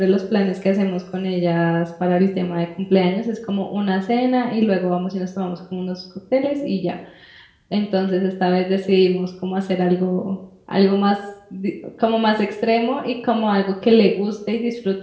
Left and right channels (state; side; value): identical; both; correlation 1.00